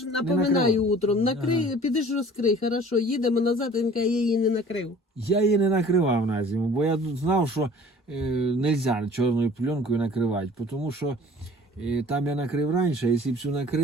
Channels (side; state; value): both; normal; correlation 0.49